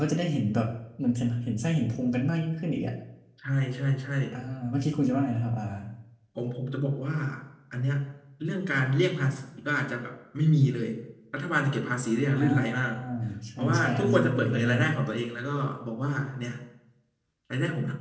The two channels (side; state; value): both; identical; correlation 1.00